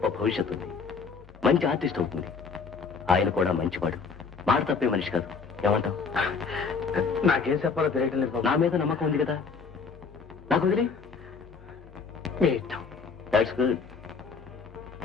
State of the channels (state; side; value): quieter; right; 5.3 dB